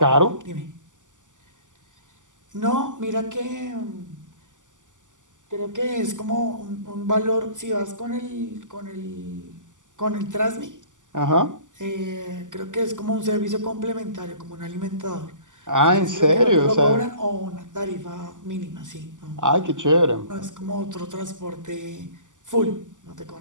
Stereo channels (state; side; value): late; left; 0.87 ms